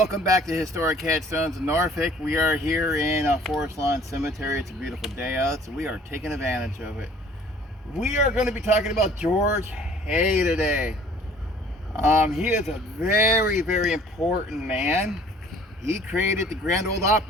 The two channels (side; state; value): both; normal; correlation 0.53